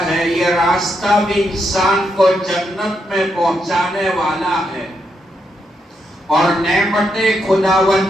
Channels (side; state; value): both; normal; correlation 0.80